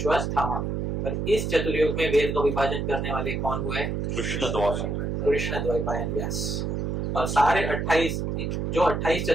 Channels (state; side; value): noise; right; hum, 1 dB below the sound